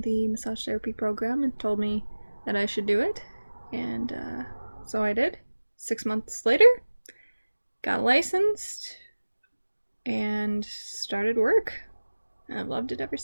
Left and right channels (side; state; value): both; inverted; correlation -1.00